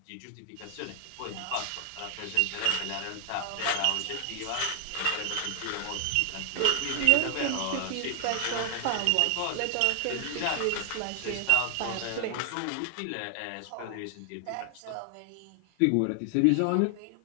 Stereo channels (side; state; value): both; different; correlation 0.00